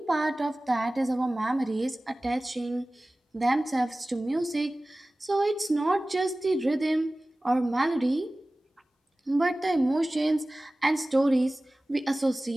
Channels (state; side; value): normal; both; correlation 0.97